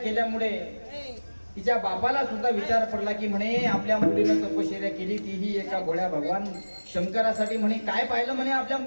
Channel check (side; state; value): both; inverted; correlation -1.00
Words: तिच्या बापाला सुद्धा विचार पडला की म्हणे आपल्या मुलीनं तपश्चर्या केली तीही एका भोळ्या भगवान शंकरासाठी. म्हणे काय पाहिलं म्हणे आपल्या